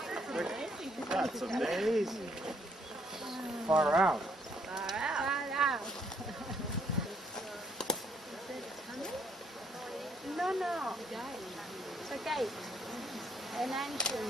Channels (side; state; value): both; normal; correlation 0.68